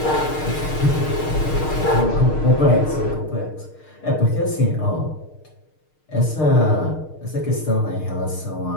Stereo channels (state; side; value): late; right; 6.5 ms